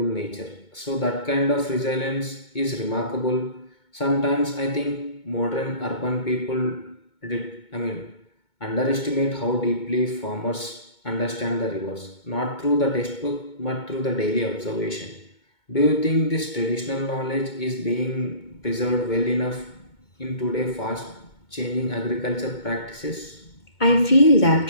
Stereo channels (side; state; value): right; late; 2.2 ms